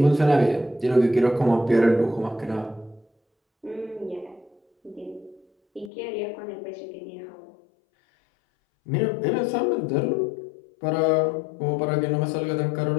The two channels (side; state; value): right; drops out; at 5.9 s